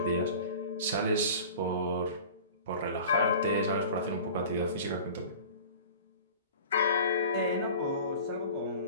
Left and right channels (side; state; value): both; inverted; correlation -0.40